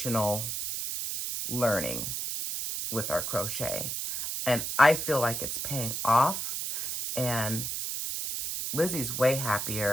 learning with our crochet. And I feel like it's paying off and Lizzie's way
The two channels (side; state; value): right; noise; hiss, 3 dB below the sound